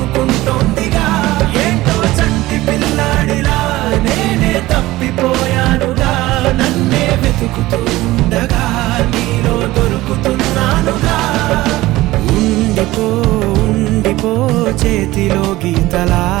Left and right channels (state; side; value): quieter; left; 17.9 dB